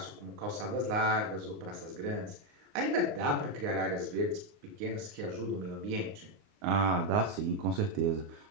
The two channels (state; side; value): late; left; 29 ms